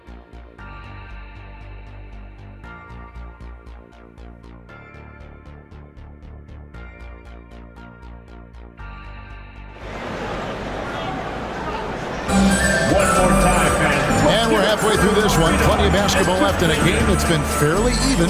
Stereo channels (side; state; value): both; identical; correlation 1.00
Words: And we're halfway through this one. Plenty of basketball left in a game that's been fairly